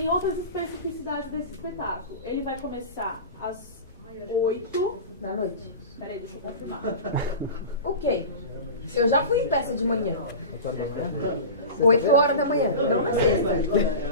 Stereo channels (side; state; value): both; inverted; correlation -0.30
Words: outras especificidades desse espetáculo. Ele vai começar às 8 da noite. Peraí, deixa eu confirmar. Ok. Eu já fui em peça de manhã. 8 horas da manhã. Não na sexta,